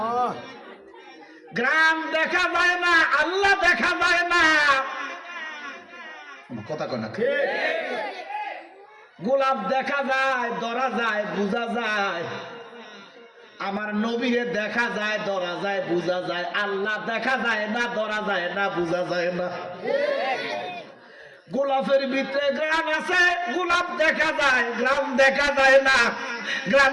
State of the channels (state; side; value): identical; both; correlation 1.00